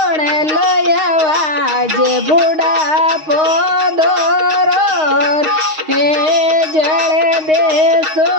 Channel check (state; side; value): late; left; 6.4 ms